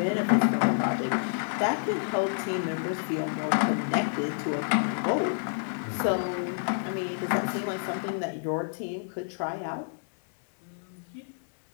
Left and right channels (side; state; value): right; silent; digital silence